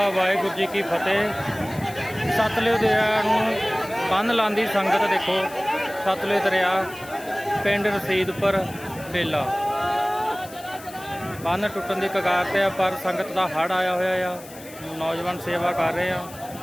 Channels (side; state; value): left; noise; hiss, 18 dB below the sound